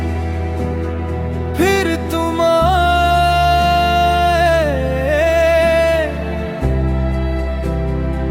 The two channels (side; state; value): both; identical; correlation 1.00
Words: फिर तुम आए